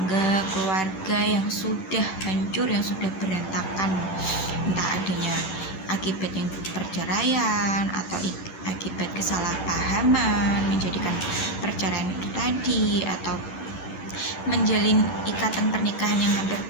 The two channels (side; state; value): right; late; 10 ms